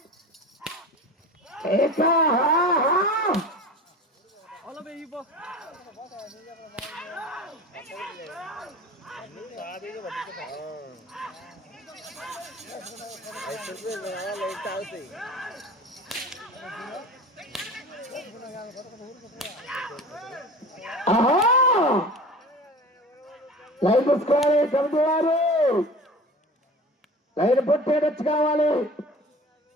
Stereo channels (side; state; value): both; normal; correlation 0.37